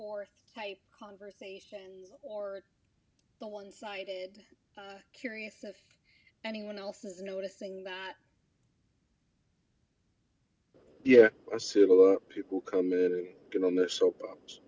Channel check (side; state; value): both; identical; correlation 1.00